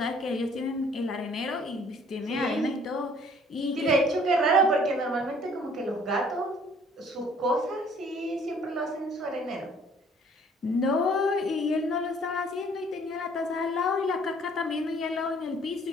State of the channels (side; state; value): both; normal; correlation 0.57